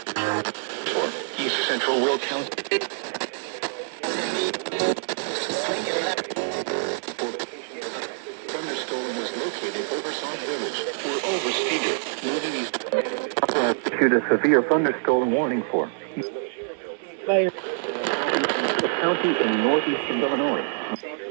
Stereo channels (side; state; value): left; silent; 58 dB below the other